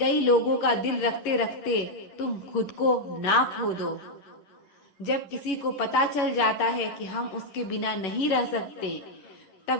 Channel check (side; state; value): right; late; 11 ms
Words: लोगों का दिल रखते रखते तुम खुद को ना खो दो। जब किसी को पता चल जाता है कि हम उसके बिना नहीं रह सकते,